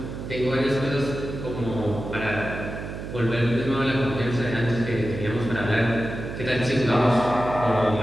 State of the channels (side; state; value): right; noise; hum, 8 dB below the sound